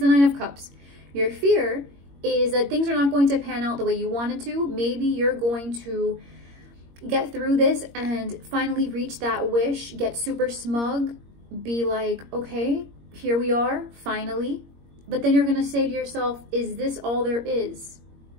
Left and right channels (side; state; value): left; late; 21 ms